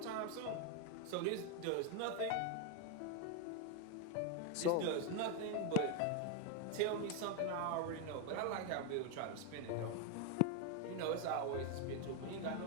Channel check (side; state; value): both; different; correlation 0.01